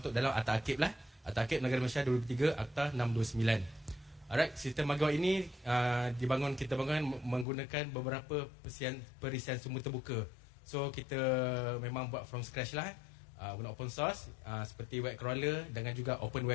dalam Akta Arkib lah. Akta Arkib Negara Malaysia 2003, Akta 629. Alright, sistem MyGua ini kita bangun menggunakan beberapa perisian sumber terbuka. So kita memang buat from scratch lah. Guna open source seperti web crawler dengan juga open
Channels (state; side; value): drops out; right; at 7.5 s